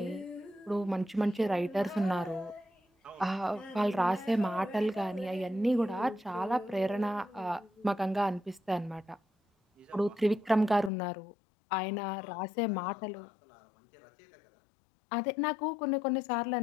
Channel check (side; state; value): right; drops out; at 10.9 s